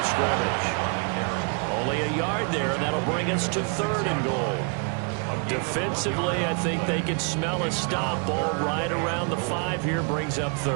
scrimmage. Only a yard there, and that'll bring us to third and goal. Defensively, I think they can smell a stop. Ball right around the 5 here, brings up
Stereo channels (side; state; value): left; quieter; 37.6 dB